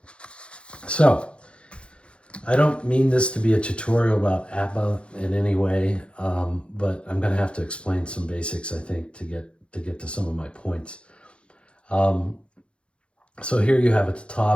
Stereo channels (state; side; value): late; right; 0.058 ms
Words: So, I don't mean this to be a tutorial about APBA in any way, but I'm going to have to explain some basics, I think, to get to some of my points. So here you have at the